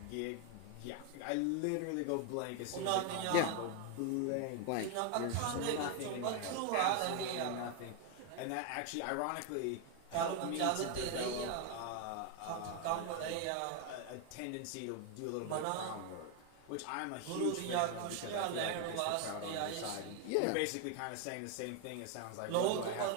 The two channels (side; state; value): both; different; correlation 0.01